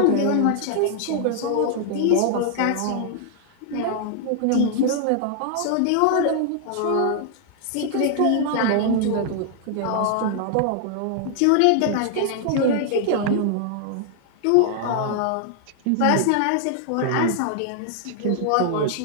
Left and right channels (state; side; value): different; both; correlation 0.00